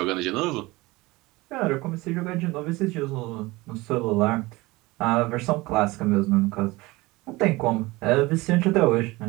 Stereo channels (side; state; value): left; quieter; 21.6 dB